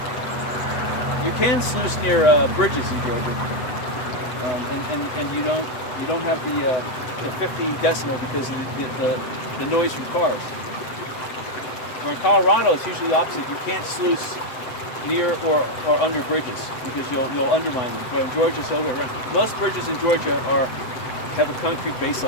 You can sluice near bridges in Georgia, and you don't have the 50 decimal because of the noise from cars. Where in Colorado, it's usually the opposite. You can't sluice near or under bridges because you'll undermine them. But in Georgia, it's the other way around. Most bridges in Georgia have a concrete base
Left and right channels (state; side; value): late; right; 7.9 ms